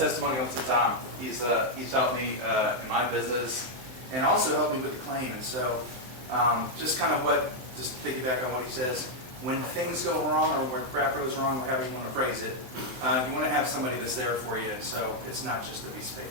to Tom. He's helped me in my business and also helped me with the claim. And so just piggyback on what he says. When things go wrong or when crap goes wrong, however you want to phrase it, you want to have somebody that's there for you. And so it's not just a piece of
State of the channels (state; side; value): late; left; 23 ms